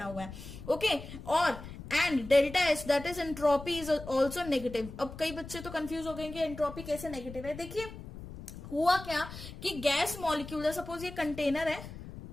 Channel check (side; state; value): left; noise; rumble, 13 dB below the sound